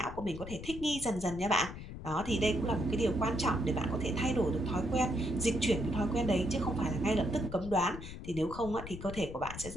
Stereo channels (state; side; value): noise; left; rumble, 11 dB below the sound